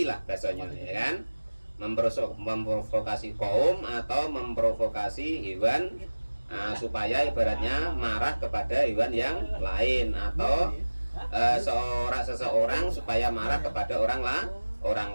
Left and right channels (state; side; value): inverted; both; correlation -1.00